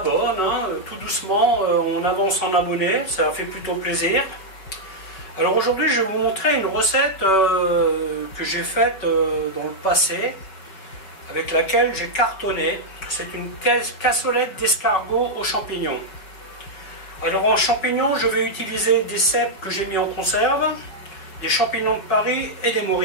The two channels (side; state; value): right; late; 5.2 ms